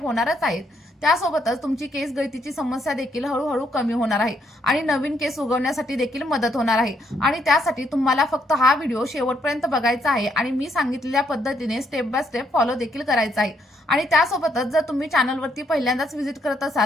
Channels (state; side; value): normal; both; correlation 0.73